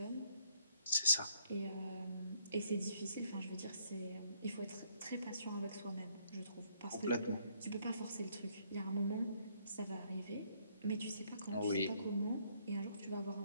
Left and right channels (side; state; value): both; inverted; correlation -0.68